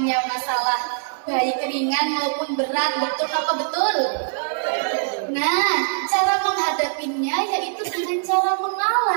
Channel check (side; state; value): left; silent; 64 dB below the other